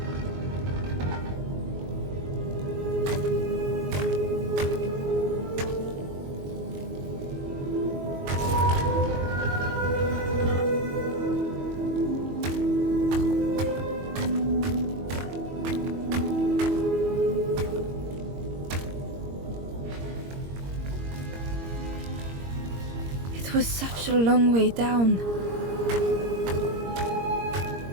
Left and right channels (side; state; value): left; late; 22 ms